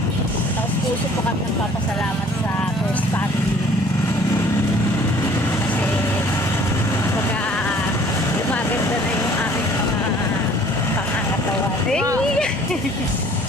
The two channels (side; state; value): both; normal; correlation 0.54